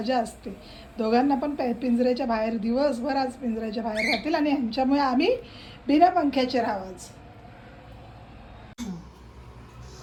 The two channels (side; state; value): both; identical; correlation 1.00